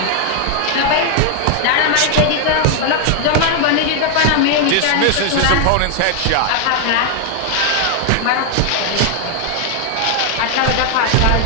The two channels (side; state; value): both; different; correlation 0.00